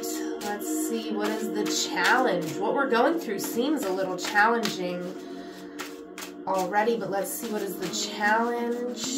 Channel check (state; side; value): identical; both; correlation 1.00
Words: let's see, what is the challenge? What we're going through seems a little challenging already, but let's see, what is the